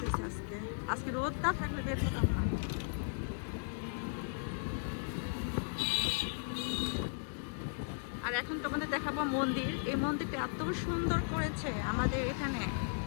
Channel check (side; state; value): right; silent; digital silence